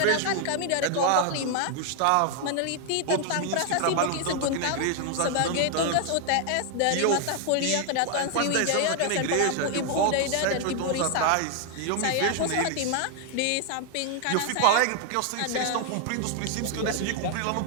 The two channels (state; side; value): different; both; correlation 0.00